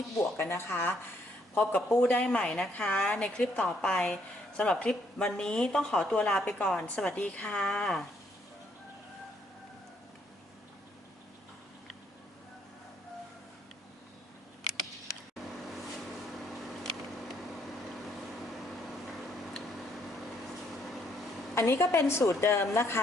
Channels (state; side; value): normal; both; correlation 0.70